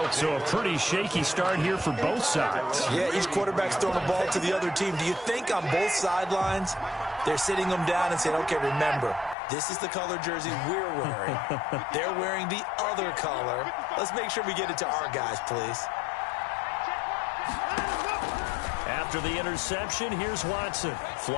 So a pretty shaky start here for both sides. Yeah, each quarterback's throwing the ball to the other team. Do you think on both sidelines they're sitting them down and saying, okay, remember, this is the color jersey we're wearing. They're wearing the other color. Let's make sure we get it to our guys, please. After the interception, here's Watson.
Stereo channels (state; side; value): drops out; right; at 9.3 s